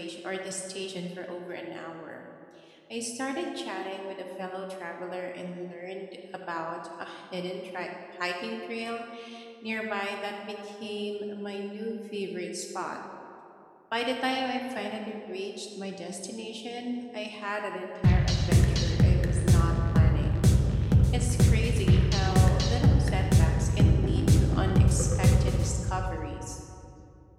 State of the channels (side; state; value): both; identical; correlation 1.00